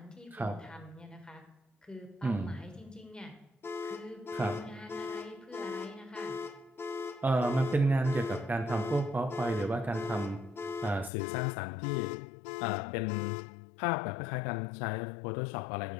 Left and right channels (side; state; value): right; drops out; at 11.1 s